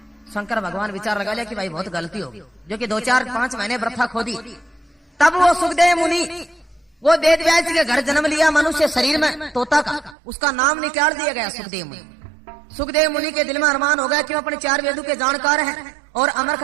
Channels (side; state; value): left; drops out; at 10.2 s